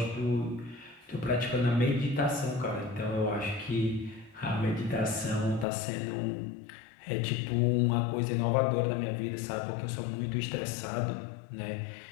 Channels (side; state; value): right; drops out; at 5.7 s